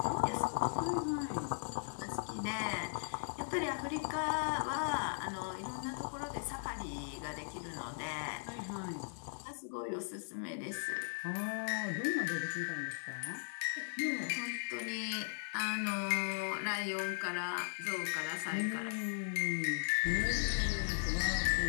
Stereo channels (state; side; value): silent; right; 52 dB below the other